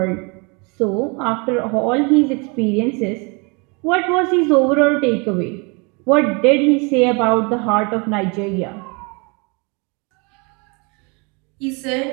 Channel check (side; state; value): left; quieter; 30.7 dB